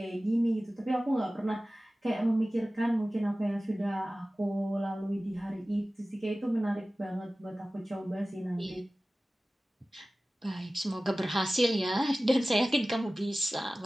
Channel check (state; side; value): normal; both; correlation 0.97